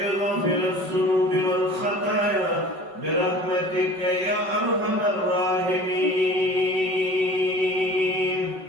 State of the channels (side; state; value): left; late; 5.3 ms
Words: غافر الذنوب والخطايا برحمتك يا أرحم الراحمين.